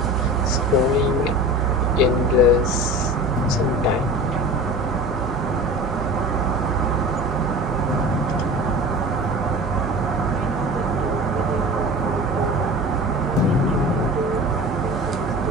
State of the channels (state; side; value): normal; both; correlation 0.36